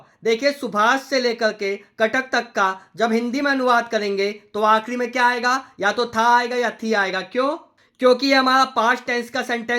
देखिए सुभाष से लेकर के कटक तक का जब हिंदी में अनुवाद करेंगे तो आखिरी में क्या आएगा? या तो था आएगा या थी आएगा। क्यों? क्योंकि ये हमारा पास्ट टेंस का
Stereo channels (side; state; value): both; identical; correlation 1.00